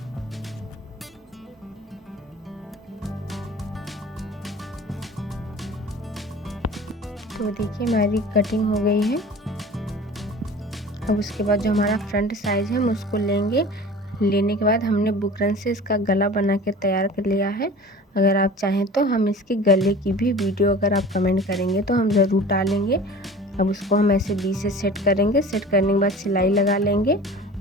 तो देखिए हमारी कटिंग हो गई है। अब उसके बाद जो हमारा फ्रंट साइज है हम उसको लेंगे लेने के बाद हमने बुकरम से इसका गला बना के तैयार कर लिया है। अगर आप चाहें तो हम इसके गले की भी वीडियो अगर आप कमेंट करेंगे तो हम ज़रूर डालेंगे। अब उसको हम ऐसे बीच से सेट करेंगे। सेट करने के बाद सिलाई लगा लेंगे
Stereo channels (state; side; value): normal; both; correlation 0.41